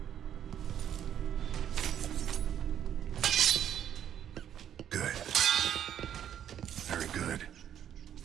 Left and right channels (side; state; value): left; quieter; 9.8 dB